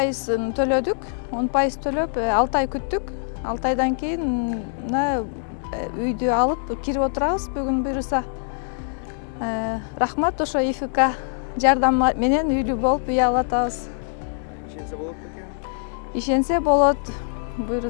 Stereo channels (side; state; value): right; silent; digital silence